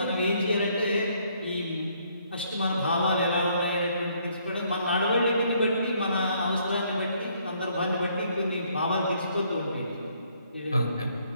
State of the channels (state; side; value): inverted; both; correlation -0.67